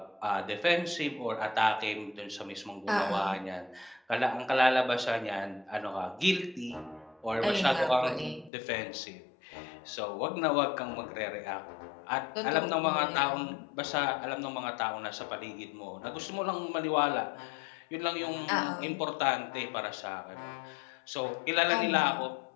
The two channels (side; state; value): right; drops out; at 8.5 s